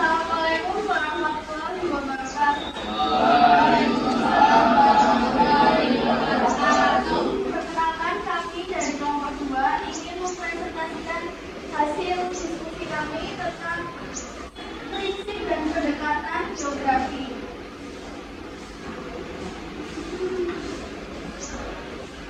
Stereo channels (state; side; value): identical; both; correlation 1.00